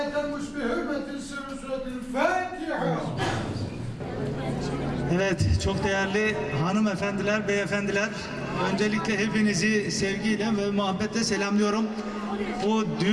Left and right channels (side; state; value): both; identical; correlation 1.00